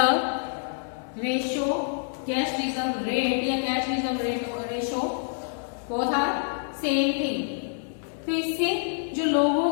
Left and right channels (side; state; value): right; silent; digital silence